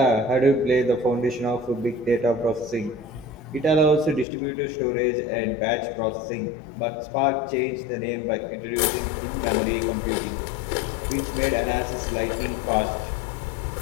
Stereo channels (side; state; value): right; drops out; at 4.2 s